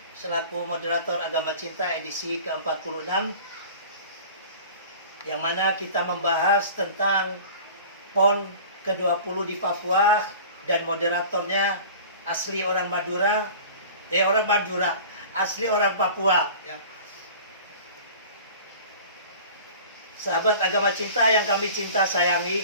selaku moderator Agama Cinta edisi ke-46, yang mana kita membahas tentang PON ke-20 di Papua, dan moderatornya asli orang Madura, asli orang Papua ya. Sahabat Agama Cinta yang kami cinta sayangi,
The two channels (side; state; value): both; inverted; correlation -0.41